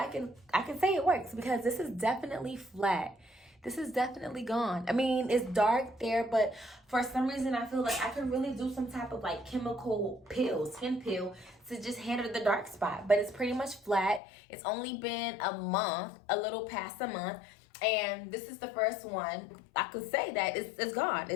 can say it works because this is definitely flat. This is definitely gone. I mean, it's dark there, but for some reason I feel like I could really do some type of like chemical peel, skin peel, to just handle the dark spot. But it's pretty much flat. It's only been a month, a little past a month. And this is the first one. I could say that it's gone.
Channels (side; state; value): right; drops out; at 14.2 s